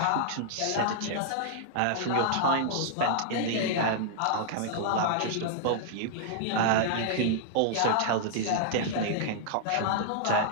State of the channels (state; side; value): different; both; correlation -0.01